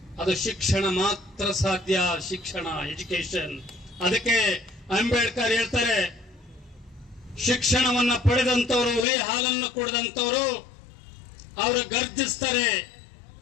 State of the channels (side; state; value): right; drops out; at 9.1 s